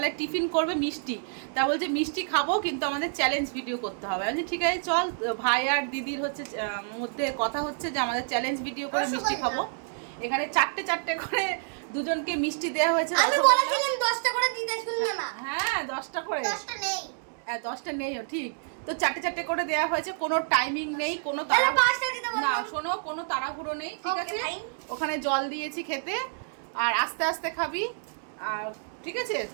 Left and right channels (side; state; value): left; silent; digital silence